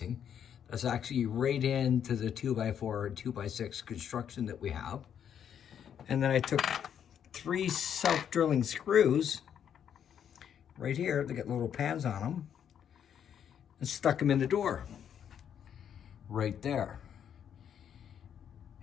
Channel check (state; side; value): quieter; right; 8.8 dB